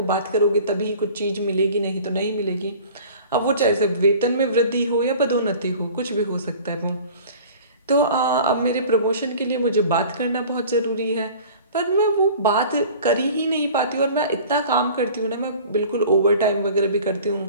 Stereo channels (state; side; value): inverted; both; correlation -0.44